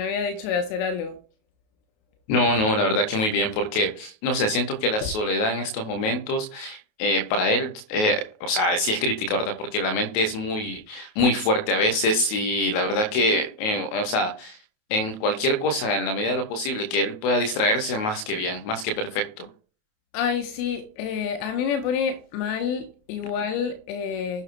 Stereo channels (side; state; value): right; late; 28 ms